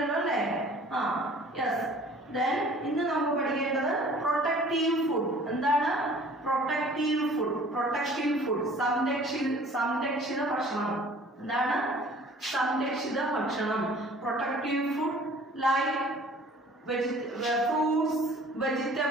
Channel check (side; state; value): both; normal; correlation 0.50